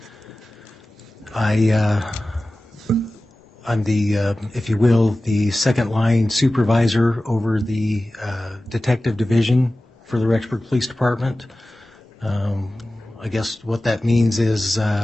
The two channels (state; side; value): normal; both; correlation 0.96